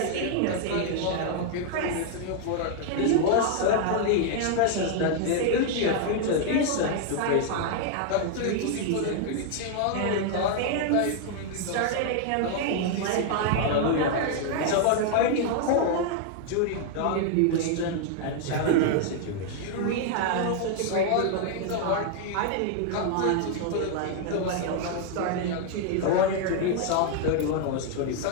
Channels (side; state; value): both; different; correlation 0.00